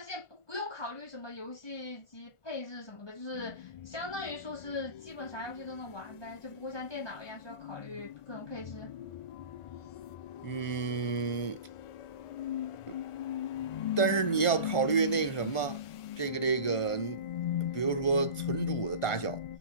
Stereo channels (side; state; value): right; late; 1.4 ms